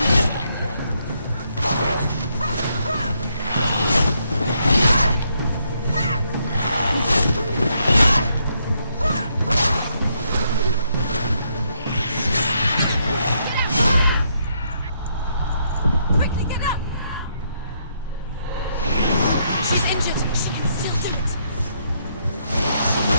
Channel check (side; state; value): both; inverted; correlation -0.75